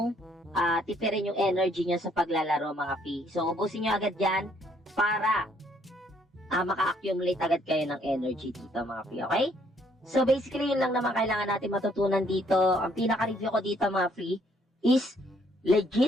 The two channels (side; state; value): both; normal; correlation 0.67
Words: tipirin yung energy nyo sa paglalaro mga free. So, ubusin nyo agad yan para maka-accumulate agad kayo ng energy dito mga free, okay? So, basically, yun lang naman kailangan natin matutunan dito. Ang pinaka-review ko dito mga free is